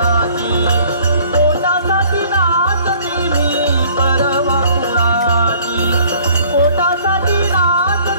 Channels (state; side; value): inverted; both; correlation -0.55